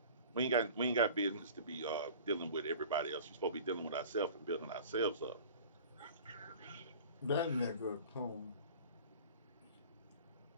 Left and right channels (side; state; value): both; inverted; correlation -0.42